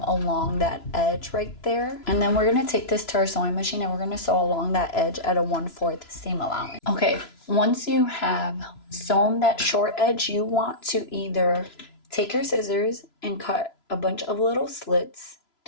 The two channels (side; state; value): right; late; 3.0 ms